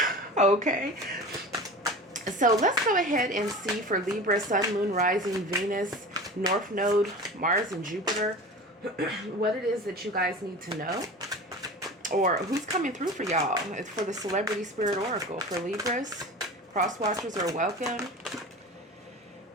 okay? So let's go ahead and see for Libra, Sun, Moon, Rising, Venus, North Node, Mars, and Jupiter, what it is that you guys need to know, or who's coming through for y'all. It's for the Celebrity Spirit Oracle. For Libras, cross watchers are welcome.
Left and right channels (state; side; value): normal; both; correlation 0.34